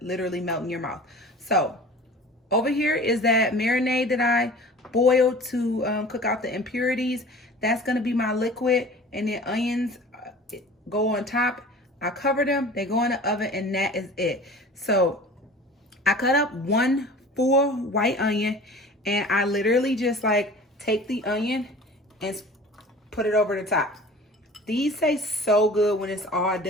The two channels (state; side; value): normal; both; correlation 0.42